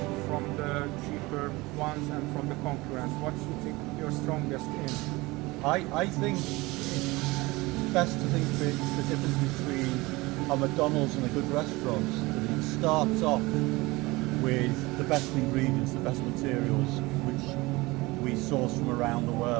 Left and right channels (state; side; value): quieter; left; 22.0 dB